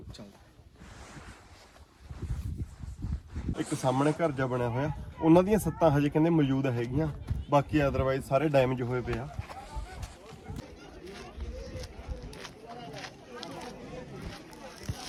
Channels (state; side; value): identical; both; correlation 1.00